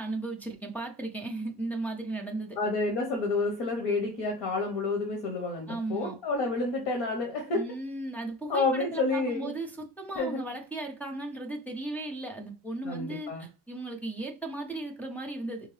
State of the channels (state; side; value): normal; both; correlation 0.38